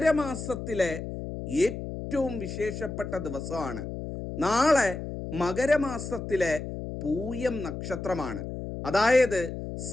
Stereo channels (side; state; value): left; noise; hum, 7 dB below the sound